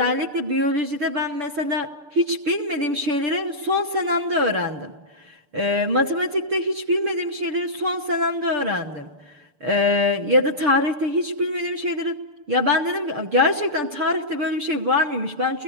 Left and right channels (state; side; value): late; left; 6.8 ms